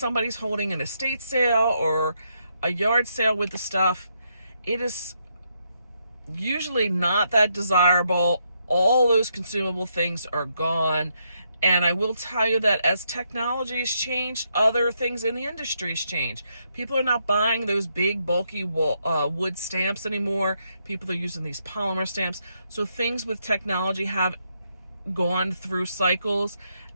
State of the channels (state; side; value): inverted; both; correlation -0.78